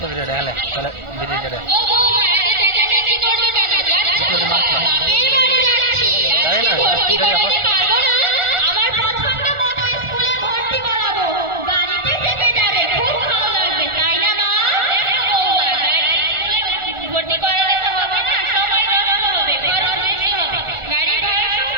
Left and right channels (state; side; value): late; left; 1.4 ms